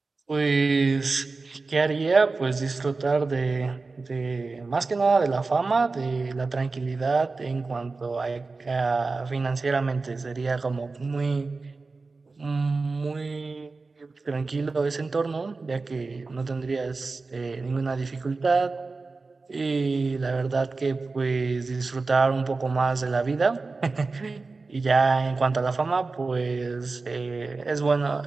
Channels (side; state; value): left; quieter; 3.9 dB